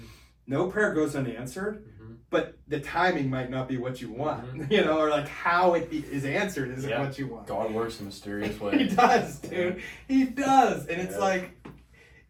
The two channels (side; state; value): both; identical; correlation 1.00